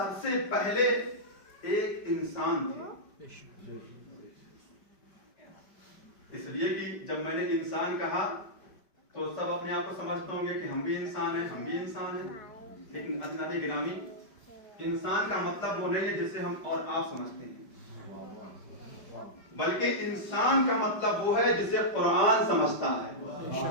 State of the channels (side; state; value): right; late; 5.1 ms